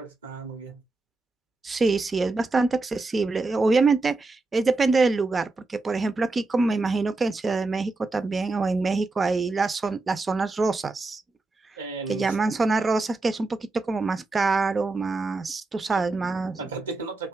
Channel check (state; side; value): quieter; left; 3.4 dB